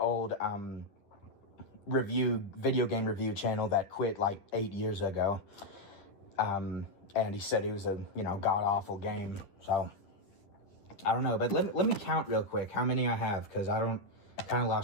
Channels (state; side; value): late; right; 10 ms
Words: video game review channel that quit like 8 years ago. And he said it was a, you know, god-awful game. So, I don't know. But let me count real quick how many I have, because I kind of